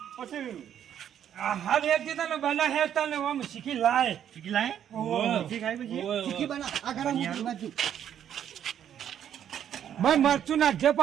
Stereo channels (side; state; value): left; quieter; 9.7 dB